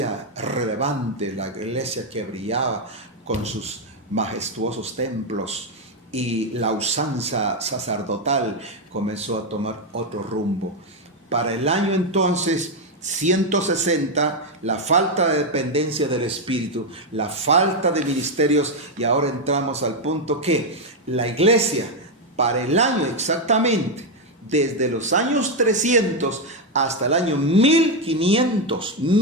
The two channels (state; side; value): normal; both; correlation 0.04